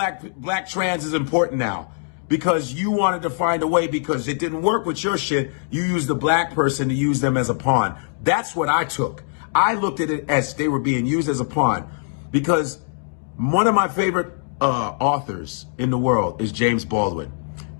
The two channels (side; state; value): right; silent; digital silence